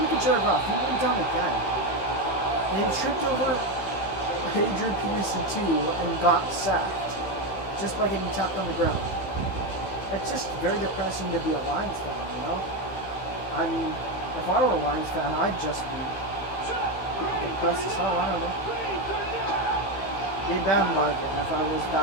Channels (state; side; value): late; right; 15 ms